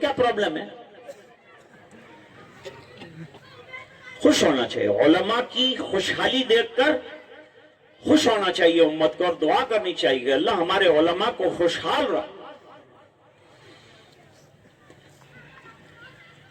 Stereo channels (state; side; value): identical; both; correlation 1.00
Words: پرابلم ہے؟ خوش ہونا چاہیے. علماء کی خوشحالی دیکھ کر خوش ہونا چاہیے امت کو, اور دعا کرنی چاہیے اللہ ہمارے علماء کو خوشحال رہا.